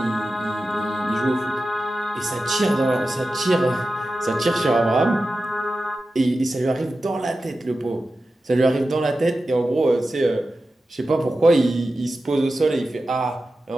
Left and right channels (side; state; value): both; normal; correlation 0.93